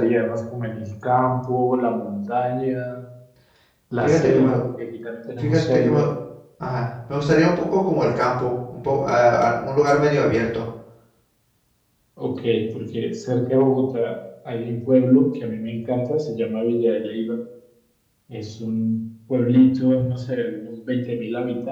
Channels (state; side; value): identical; both; correlation 1.00